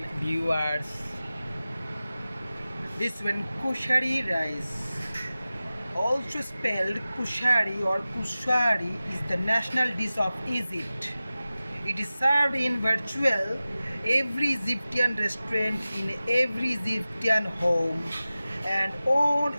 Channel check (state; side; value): inverted; both; correlation -0.96